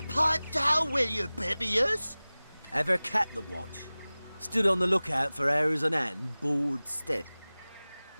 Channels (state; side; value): inverted; both; correlation -0.99